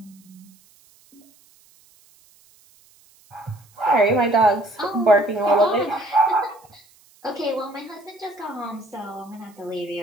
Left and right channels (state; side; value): noise; right; hiss, 30 dB below the sound